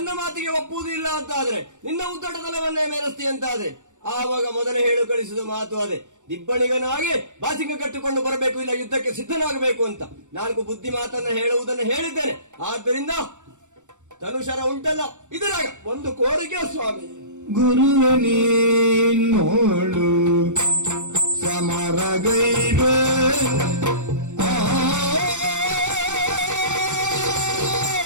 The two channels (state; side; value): late; left; 0.85 ms